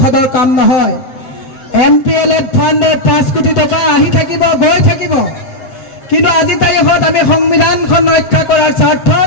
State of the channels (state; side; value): late; right; 7.9 ms